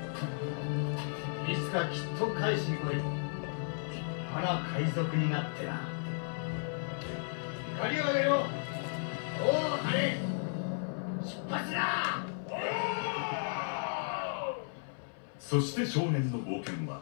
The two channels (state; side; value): silent; right; 55 dB below the other